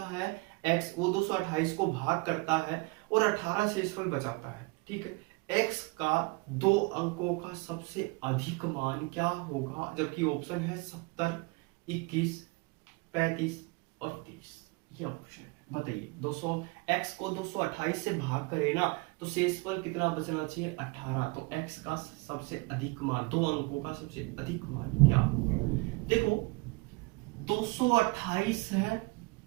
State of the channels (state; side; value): quieter; left; 26.0 dB